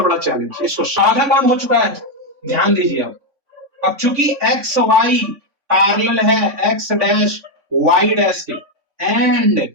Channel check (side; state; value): left; late; 3.5 ms